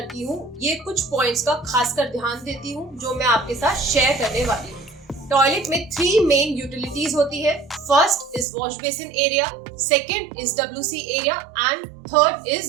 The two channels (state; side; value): drops out; left; at 8.5 s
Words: हूँ ये कुछ पॉइंट्स का खासकर ध्यान देती हूँ जो मैं आपके साथ शेयर करने वाली हूँ. टॉयलेट में 3 मेन यूटिलिटीज होती है. First is wash basin area, second is WC area and third